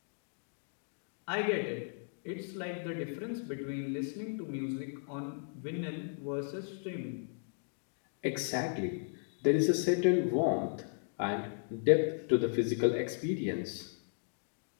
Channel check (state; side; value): silent; right; digital silence